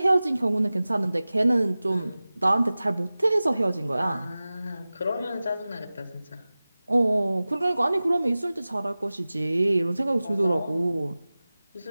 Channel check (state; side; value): inverted; both; correlation -0.97